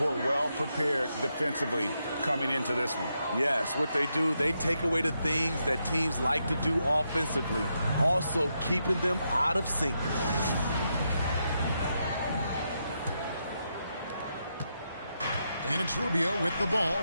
well prepared defensively coming into this one. Yes, what they do, they take away the things that teams like to do offensively, also keeping them out of sync. And it's Rubio with the ball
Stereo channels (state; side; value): inverted; both; correlation -0.82